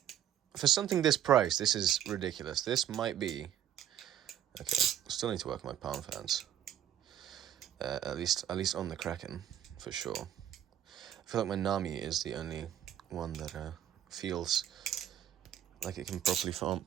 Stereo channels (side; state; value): left; quieter; 10.6 dB